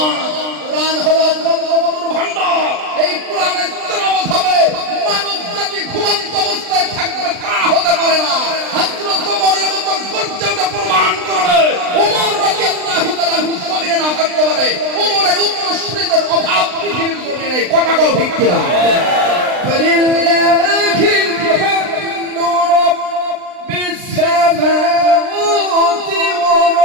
কোরআন হলো গ্রন্থমধুর ভান্ডার। এই কোরআনের তেলাওয়াত হবে, মানব জাতি ঘুমন্ত অবস্থায় থাকবে তা হতে পারে না। হযরত ওমরের মতো গর্জে ওঠে প্রমাণ করবে, ওমর রাদিয়াল্লাহু তাআলা জমিনে না থাকতে পারে। ওমরের উত্তরসূরিদের অভাব পৃথিবীর জমিনে নেই। কথা কও ঠিক কিনা? ফালিল্লাহিল হামদু রাব্বিস সামাওয়াতি ওয়া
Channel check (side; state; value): left; late; 39 ms